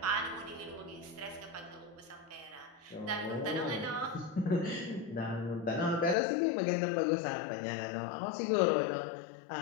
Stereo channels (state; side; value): drops out; right; at 6.2 s